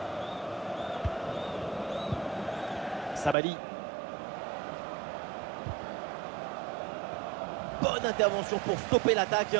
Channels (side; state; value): left; drops out; at 3.4 s